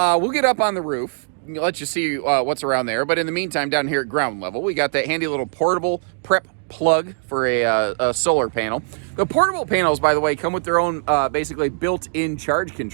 we'll get up on the roof, let you see what's around there, but in the meantime, down here at ground level, we got that handy little portable prep plug for a solar panel. The portable panels, by the way, come with their own basically built-in charge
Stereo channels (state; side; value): silent; left; digital silence